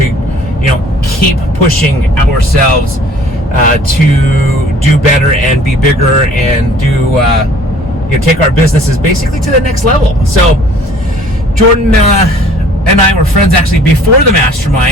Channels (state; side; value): normal; both; correlation 0.53